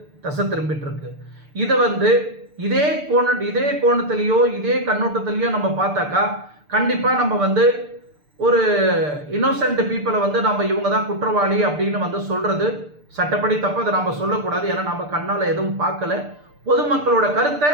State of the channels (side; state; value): left; late; 6.7 ms